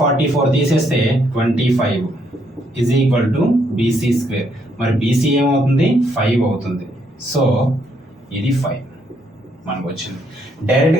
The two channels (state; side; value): normal; both; correlation 0.73